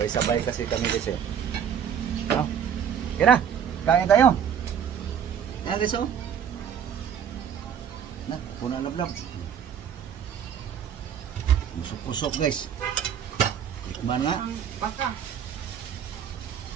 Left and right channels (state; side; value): quieter; left; 8.4 dB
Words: kasi kami guys eh. No? Okay na. Kain tayo. Ayan guys oh. Na, puno na vlog. Pusok-pusok guys. Tikman nga. Ang baka.